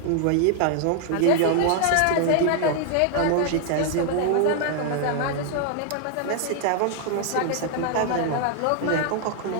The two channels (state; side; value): different; both; correlation 0.00